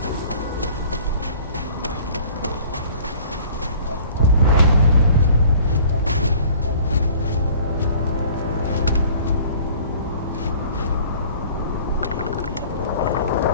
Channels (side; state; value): both; inverted; correlation -0.49